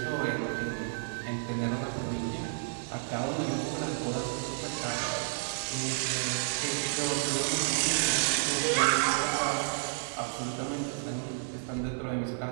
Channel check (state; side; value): silent; left; 57 dB below the other